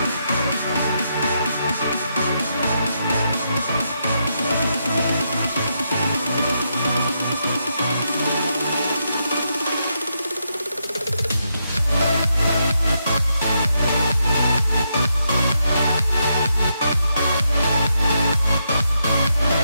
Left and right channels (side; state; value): both; inverted; correlation -0.81